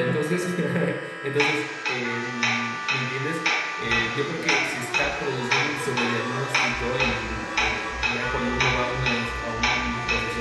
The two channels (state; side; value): identical; both; correlation 1.00